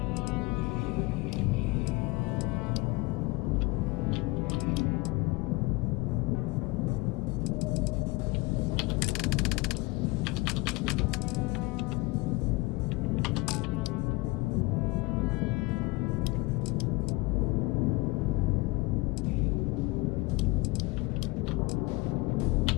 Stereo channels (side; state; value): right; quieter; 23.6 dB